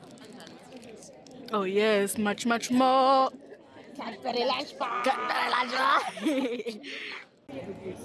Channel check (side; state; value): both; identical; correlation 1.00